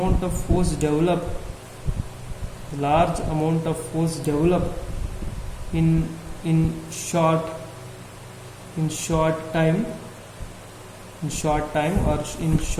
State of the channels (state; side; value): identical; both; correlation 1.00